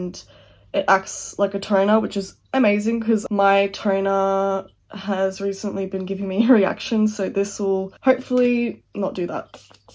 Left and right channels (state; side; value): identical; both; correlation 1.00